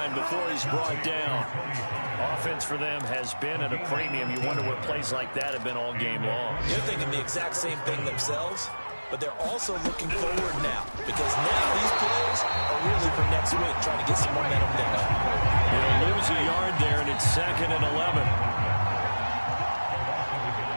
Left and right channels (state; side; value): inverted; both; correlation -1.00